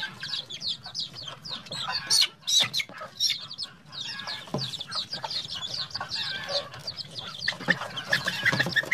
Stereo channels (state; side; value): identical; both; correlation 1.00